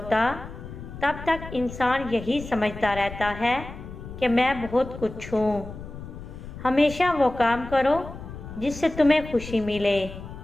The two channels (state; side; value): noise; left; rumble, 12 dB below the sound